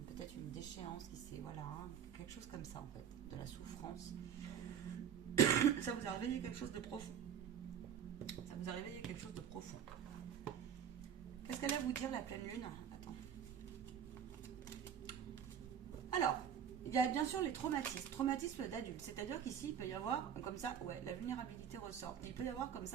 peut-être une déchéance qui s'est, voilà, quelque chose comme ça en fait, de la souffrance. Ça vous a réveillé quelque chose de profond. Ça vous a réveillé quelque chose de profond. Qu'est-ce qu'elle va vous dire la pleine lune? Attends. Alors, il y a bien sûr les traumatismes. Traumatisme d'adulte. C'est-à-dire qu'ici, il peut y avoir, comme ça, ouais, la vulnérabilité ressort. Il peut y avoir comme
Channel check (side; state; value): left; quieter; 8.5 dB